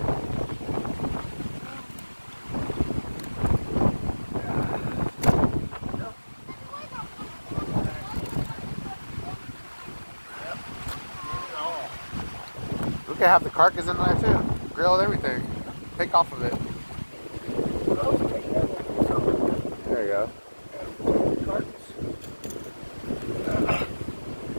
We could have the carcass in there too. Grilled everything. Take off of it. There you go.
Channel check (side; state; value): both; inverted; correlation -1.00